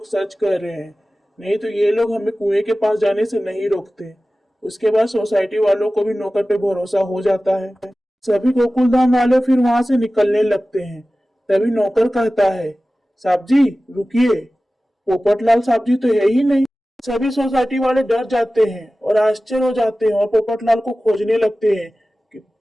सच कर रहे हैं, नहीं तो ये लोग हमें कुएं के पास जाने से नहीं रोकते। उसके बाद सोसाइटी वालों को भी नौकर पे भरोसा हो जाता है। सभी गोकुलधाम वाले फिर वहां से निकलने लगते हैं। तभी नौकर कहता है, साहब जी रुकिए, पोपटलाल साहब जी तो है ही नहीं। सभी सोसाइटी वाले डर जाते हैं और आश्चर्य हो जाते हैं और पोपटलाल को खोजने लगते हैं कि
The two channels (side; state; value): both; normal; correlation 0.96